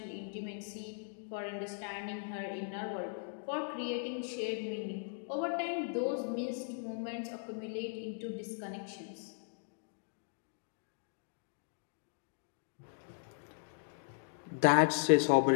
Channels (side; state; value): right; silent; digital silence